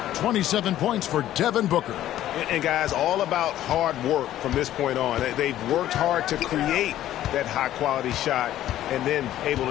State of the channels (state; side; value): quieter; right; 12.9 dB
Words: 27 points for Devin Booker. And guys, all about hard work from this point on. They've worked hard to create that high-quality shot and then able